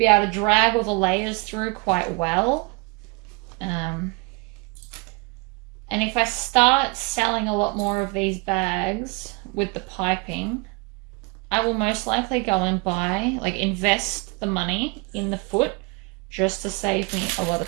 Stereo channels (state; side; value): quieter; left; 28.4 dB